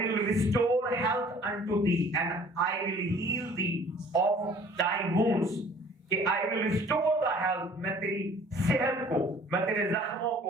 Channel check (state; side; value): normal; both; correlation 0.52